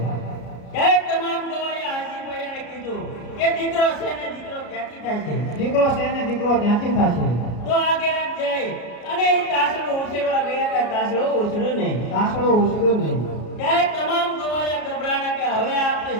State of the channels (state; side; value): late; right; 33 ms